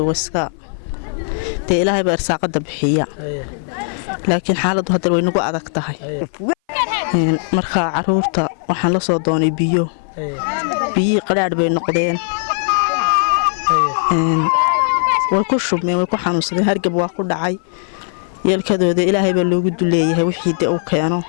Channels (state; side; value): silent; right; 59 dB below the other